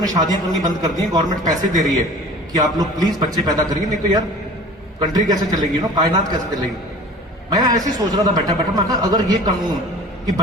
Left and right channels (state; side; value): normal; both; correlation 0.43